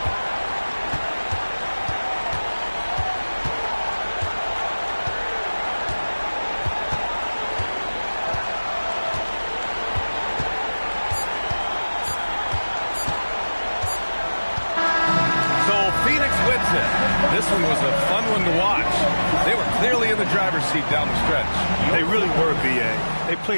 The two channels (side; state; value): both; inverted; correlation -1.00